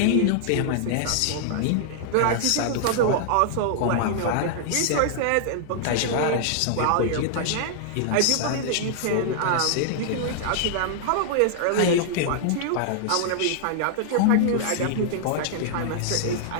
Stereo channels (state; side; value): different; both; correlation -0.01